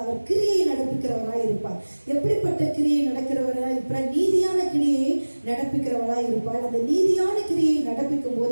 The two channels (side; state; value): both; inverted; correlation -1.00